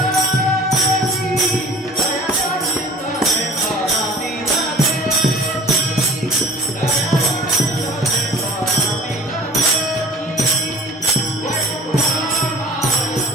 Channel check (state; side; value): normal; both; correlation 0.47